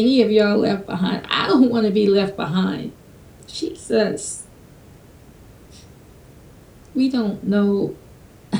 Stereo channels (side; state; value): both; identical; correlation 1.00